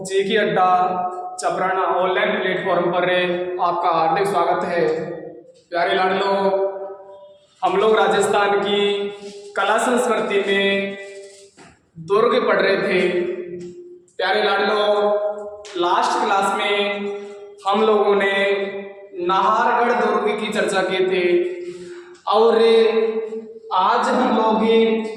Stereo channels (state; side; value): identical; both; correlation 1.00